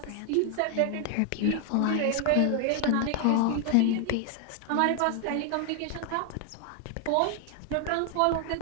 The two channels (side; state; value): both; different; correlation 0.00